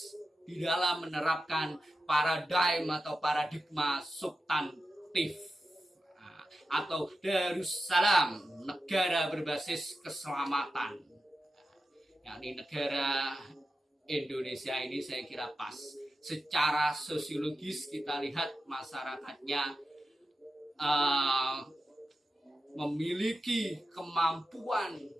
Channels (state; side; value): normal; both; correlation 0.91